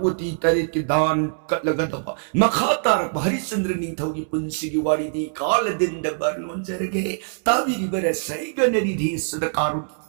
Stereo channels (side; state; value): left; silent; 62 dB below the other